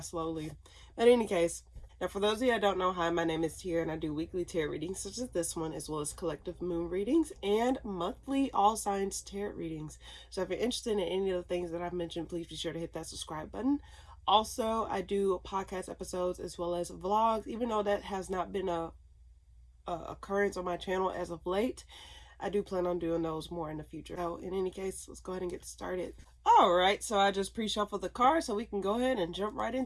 slowly. But in any case, now for those of you that don't know, hi, my name is Tia and I do weekly tarot readings such as this one, as well as collective moon readings and monthly all signs tarot readings. So if you're interested in any of the things that I've mentioned, please be sure to hit that subscribe button. Also, I do podcast episodes as well as vlogs, even though that has not been a occurrence on my channel as of late. I do plan on doing those more in the future. So in any case, let's go ahead and get started. All right, so I just pre-shuffled the cards so we can go ahead and jump right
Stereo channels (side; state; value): both; identical; correlation 1.00